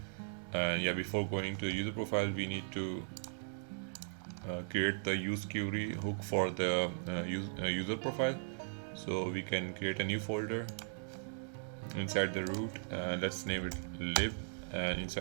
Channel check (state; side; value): silent; left; digital silence